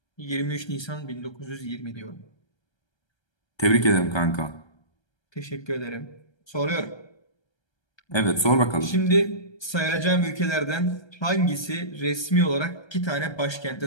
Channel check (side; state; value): right; late; 1.3 ms